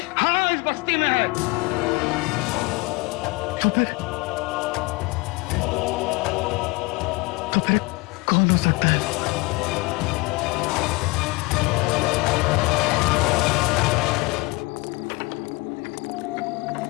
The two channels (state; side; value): quieter; right; 24.1 dB